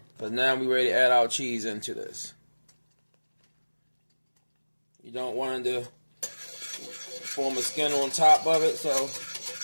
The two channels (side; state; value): both; inverted; correlation -1.00